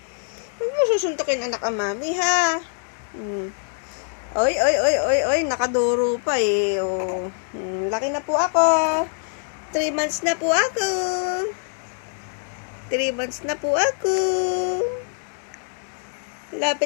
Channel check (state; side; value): silent; right; digital silence